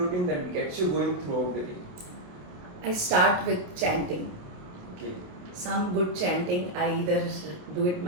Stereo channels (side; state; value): left; late; 28 ms